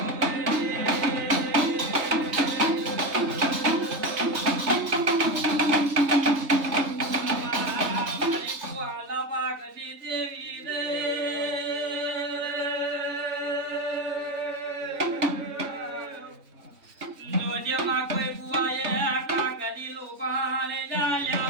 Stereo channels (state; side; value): late; left; 3.5 ms